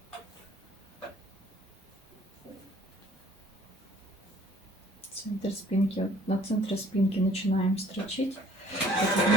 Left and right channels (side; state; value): both; normal; correlation 0.56